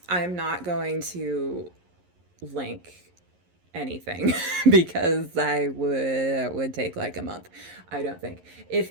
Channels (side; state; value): left; late; 11 ms